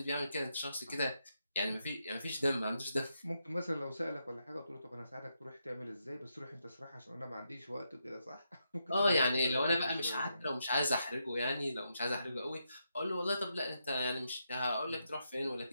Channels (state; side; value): inverted; both; correlation -0.83